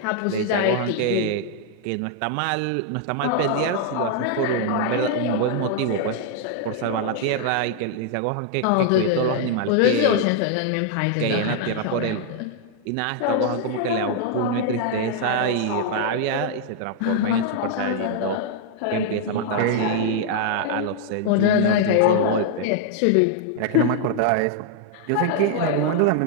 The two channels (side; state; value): both; different; correlation 0.00